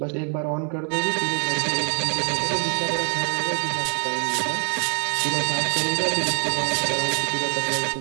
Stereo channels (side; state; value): left; quieter; 37.0 dB